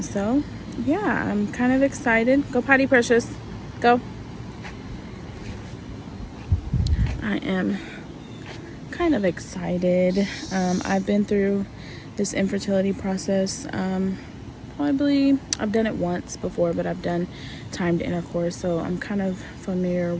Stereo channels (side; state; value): both; identical; correlation 1.00